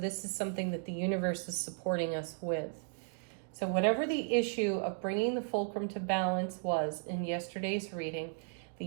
is something that the universe is supporting us with. So whatever the issue of bringing the fulcrum to balance was in yesterday's reading, the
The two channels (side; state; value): left; silent; 54 dB below the other